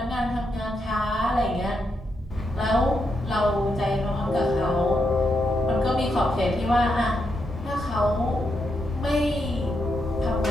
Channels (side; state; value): both; normal; correlation 0.82